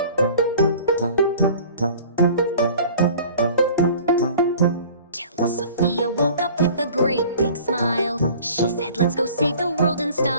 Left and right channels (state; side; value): inverted; both; correlation -0.46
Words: Till Sophia woke up with a great big smile. She said, "Let's go save the world in